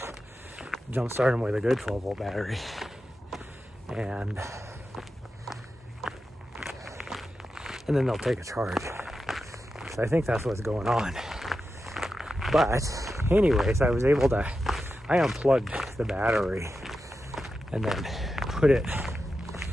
jump start them with a good 12 volt battery. And then they'll take a charge. So I think that's what's going on. But anyways, I was able to, I unplugged the battery and then put it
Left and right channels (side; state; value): both; normal; correlation 0.90